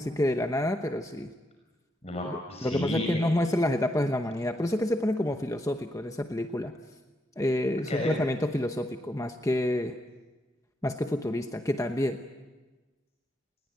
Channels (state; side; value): normal; both; correlation 0.79